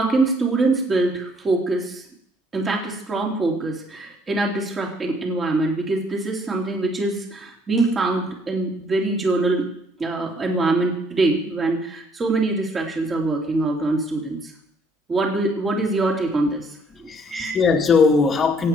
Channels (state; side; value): normal; both; correlation 0.64